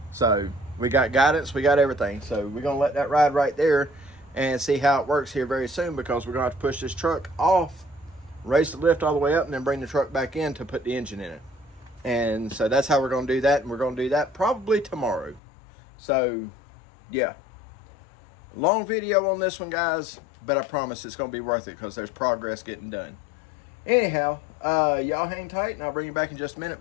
So we got guidance, we got everything. So we're gonna let that ride right there and see how it works here very soon, because we're gonna have to push this truck off, raise the lift all the way up, and then bring the truck back in to put the engine in it. And so that's how we're gonna do that, and we're gonna do that probably tomorrow. So yeah. Long video on this one, guys, but I promise it's going to be worth it because there's progress getting done. Anyhow, y'all hang tight, and I'll bring you back in just a minute,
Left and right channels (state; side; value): drops out; right; at 15.4 s